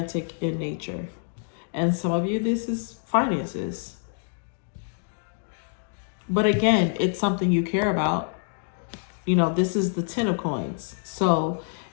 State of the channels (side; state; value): right; silent; digital silence